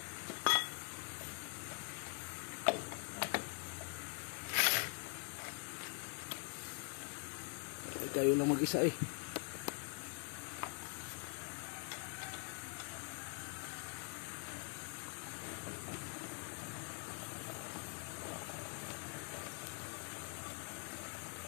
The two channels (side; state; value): right; quieter; 37.9 dB